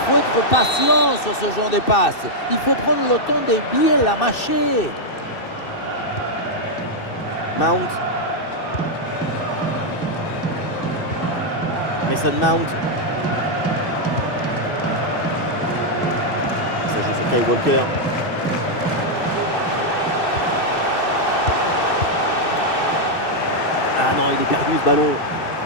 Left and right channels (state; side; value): late; right; 2.6 ms